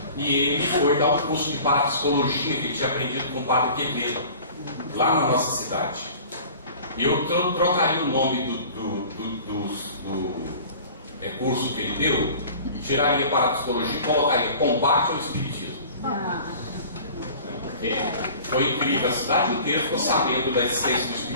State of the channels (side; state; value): both; inverted; correlation -0.44